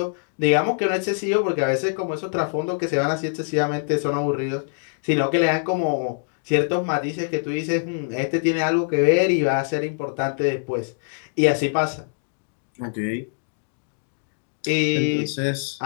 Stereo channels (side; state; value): right; silent; digital silence